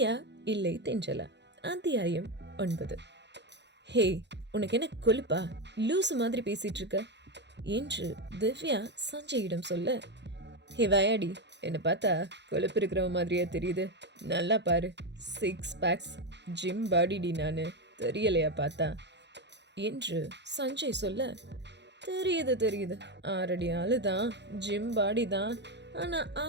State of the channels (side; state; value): left; late; 0.51 ms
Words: இல்லை தென்றலா, அத்தியாயம் 9. ஹே, உனக்கு என்ன கொழுப்பா? லூசு மாதிரி பேசிட்டு இருக்க என்று திவ்யா சஞ்சயிடம் சொல்ல, ஹே வயாடி, என்னை பார்த்தா கொழுப்பு இருக்கிற மாதிரியே தெரியுது. நல்லா பாரு, 6 பேக்ஸ், ஜிம் பாடிடி, நான் தெரியலையா பார்த்தா என்று சஞ்சய் சொல்ல, தெரியுது 6 அடி ஆளு தான், ஜிம் பாடி தான், ஆனா